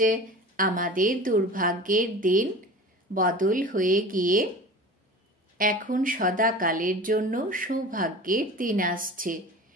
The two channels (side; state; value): both; normal; correlation 0.37